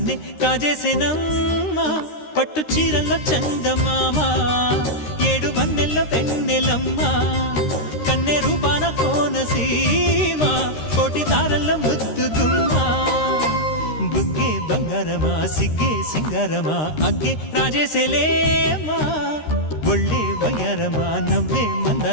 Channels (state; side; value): late; right; 13 ms